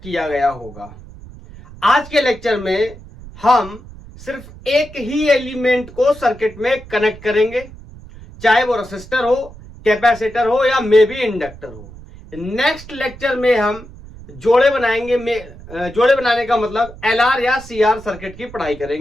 गया होगा। आज के लेक्चर में हम सिर्फ एक ही एलिमेंट को सर्किट में कनेक्ट करेंगे, चाहे वो रेसिस्टर हो, कैपेसिटर हो या मे बी इंडक्टर हो। नेक्स्ट लेक्चर में हम जोड़े बनाएंगे। जोड़े बनाने का मतलब एलआर या सीआर सर्किट की पढ़ाई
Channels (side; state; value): right; noise; rumble, 17 dB below the sound